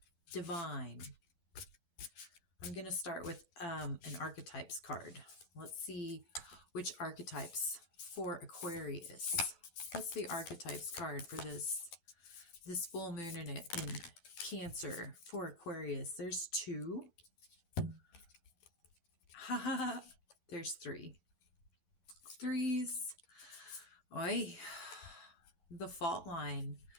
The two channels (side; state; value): right; late; 11 ms